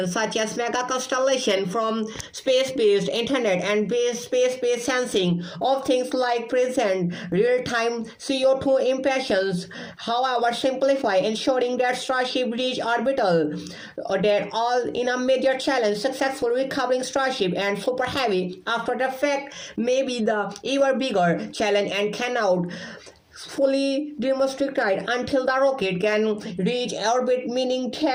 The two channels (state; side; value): identical; both; correlation 1.00